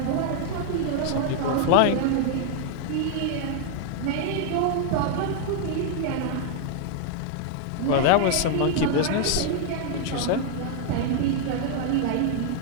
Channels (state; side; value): different; both; correlation 0.00